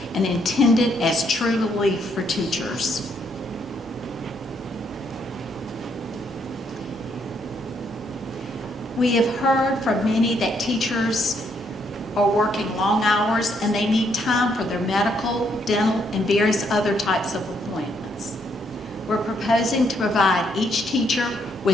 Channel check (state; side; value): normal; both; correlation 0.73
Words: and intended as true relief for teachers. We have heard from many that teachers are working long hours and they need time for their medical, dental, and various other types of appointments. We're proposing to provide each teacher